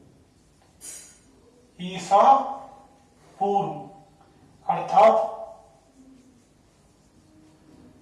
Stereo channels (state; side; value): identical; both; correlation 1.00